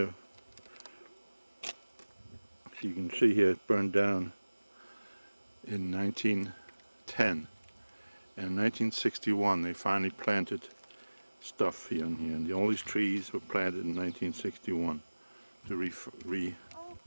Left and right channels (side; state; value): both; inverted; correlation -1.00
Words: as you can see here, it burned down in 1910. And in 1961 they finally planted stuff here and here. And all these trees were planted in 1961 to